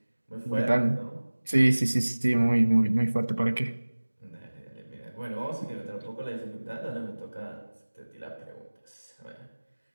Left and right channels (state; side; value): inverted; both; correlation -1.00